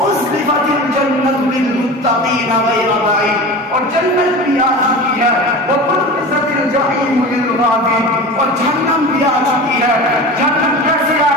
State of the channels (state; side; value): normal; both; correlation 0.32